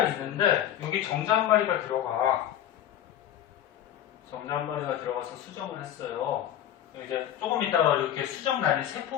있는데 여기 정자한마리가 들어가. 정자한마리가 들어가서 수정을 했어요. 이제 조금 있다가 이렇게 수정란이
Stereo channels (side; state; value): right; quieter; 11.2 dB